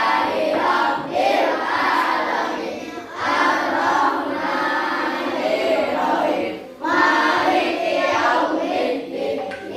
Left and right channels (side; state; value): both; identical; correlation 1.00